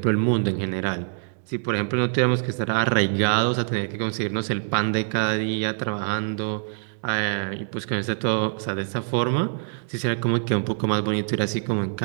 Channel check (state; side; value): silent; left; digital silence